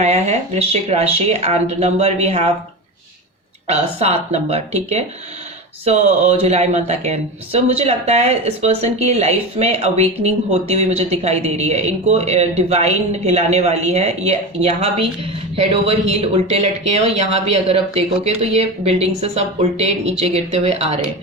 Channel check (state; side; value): normal; both; correlation 0.23